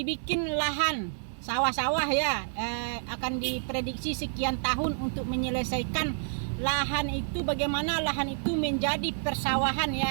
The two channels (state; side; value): silent; left; 59 dB below the other